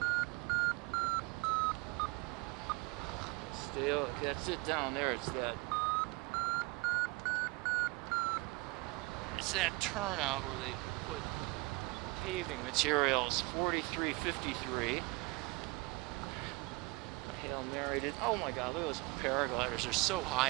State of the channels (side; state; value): left; quieter; 25.1 dB